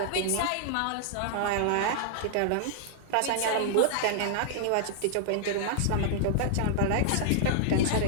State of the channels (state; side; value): different; both; correlation -0.01